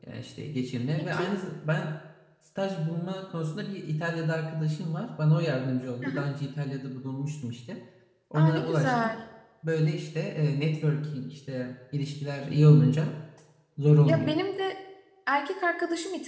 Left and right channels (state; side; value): identical; both; correlation 1.00